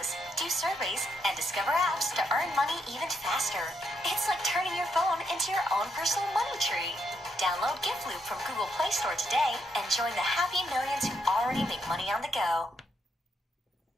do surveys, and discover apps to earn money even faster. It's like turning your phone into your own personal money tree. Download GiftLoop from Google Play Store today and join the happy millions who already make money on the go.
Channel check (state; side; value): normal; both; correlation 0.78